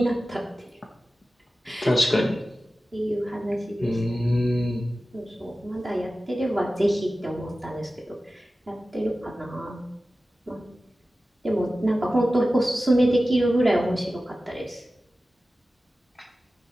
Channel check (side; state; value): both; normal; correlation 0.95